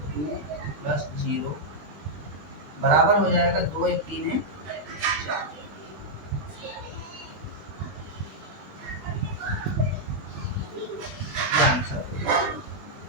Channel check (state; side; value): late; left; 21 ms